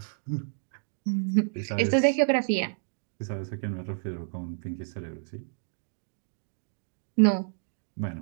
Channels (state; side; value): silent; left; 58 dB below the other